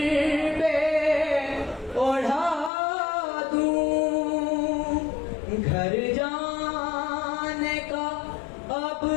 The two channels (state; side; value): drops out; right; at 2.7 s